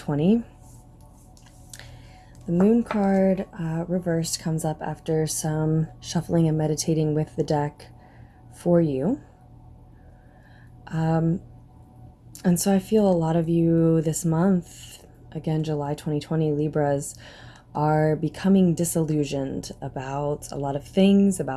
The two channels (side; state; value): both; identical; correlation 1.00